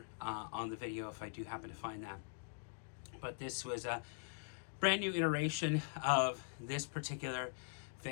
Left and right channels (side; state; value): right; silent; digital silence